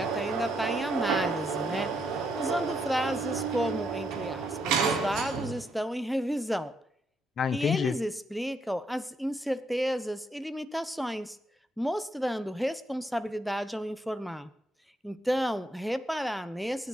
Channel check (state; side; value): normal; both; correlation 0.76